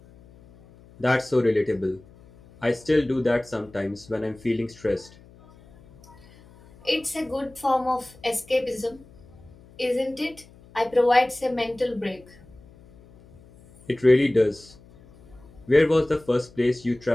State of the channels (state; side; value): noise; left; hum, 24 dB below the sound